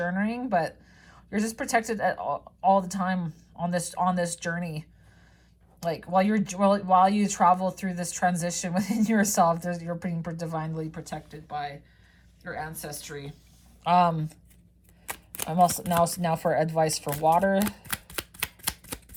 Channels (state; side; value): identical; both; correlation 1.00